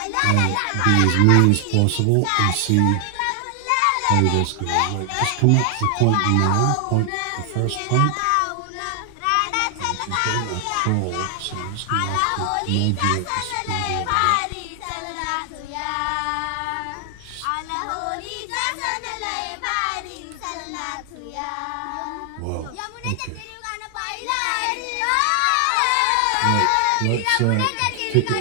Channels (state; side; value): different; both; correlation 0.00